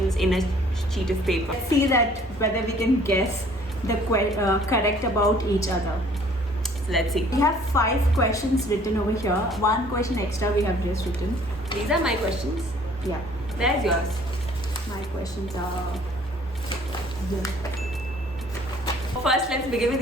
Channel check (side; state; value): both; normal; correlation 0.56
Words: in a sheet of paper. Let's see that whether we can guess the correct about each other. So let's see. We have 5 questions written over here. 1 question extra we have just written. These are my questions. Yeah, There's yours. my questions are here. First, let's begin with